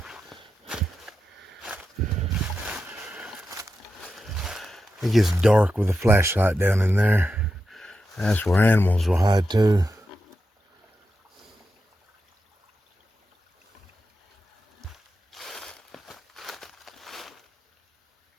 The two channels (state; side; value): normal; both; correlation 0.89